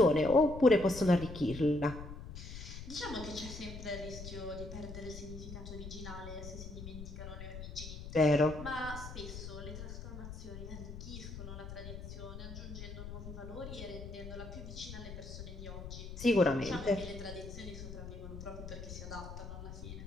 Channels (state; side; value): noise; left; rumble, 10 dB below the sound